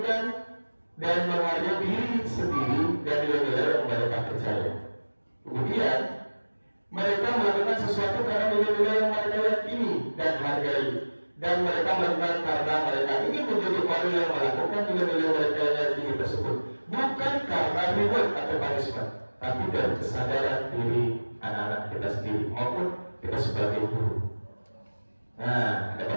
dan menghargai diri sendiri dan nilai-nilai yang mereka percaya. Kemudian mereka melakukan sesuatu karena nilai-nilai yang mereka yakini dan hargai. Dan mereka melakukan karena mereka ingin menjadi orang yang melakukan nilai-nilai mereka yang yakini tersebut. Bukan karena reward atau punishment, tapi dari kesadaran diri anak-anak kita sendiri maupun kita sebagai guru. Nah, ada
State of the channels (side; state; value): both; inverted; correlation -1.00